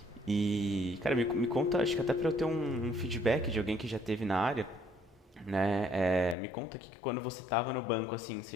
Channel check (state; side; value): drops out; right; at 6.4 s